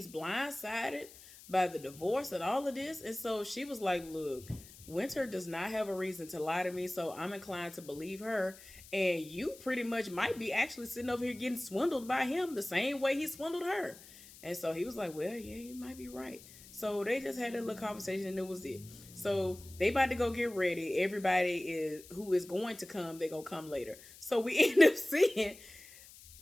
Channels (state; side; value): noise; left; hiss, 19 dB below the sound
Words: blindsided by the divorce and all of this. And so she was like, look, Winter does not have a reason to lie to me, so I'm inclined to believe her. And you pretty much might be actually sitting over here getting swindled by him the same way he swindled her. And so he was like, well, yeah, you might be right. So they just had a little conversation and it was it. So they about to go get ready. Everybody who is going to come, they gonna come later. So we end up seeing